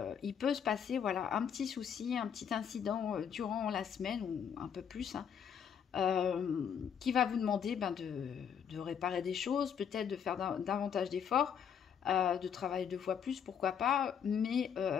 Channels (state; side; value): quieter; right; 7.9 dB